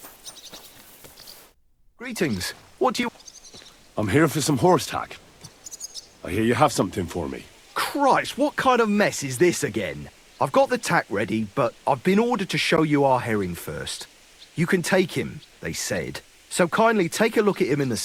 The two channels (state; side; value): identical; both; correlation 1.00